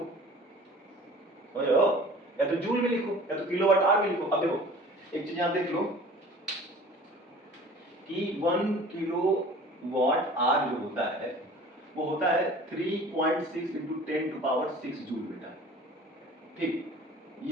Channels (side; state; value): both; normal; correlation 0.45